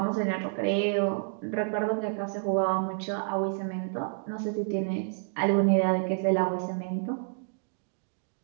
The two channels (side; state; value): left; silent; digital silence